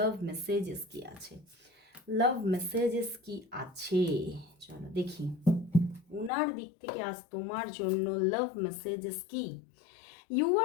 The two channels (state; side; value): drops out; right; at 6.3 s